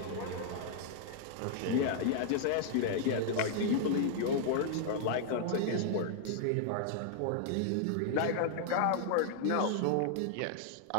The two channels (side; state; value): both; different; correlation 0.00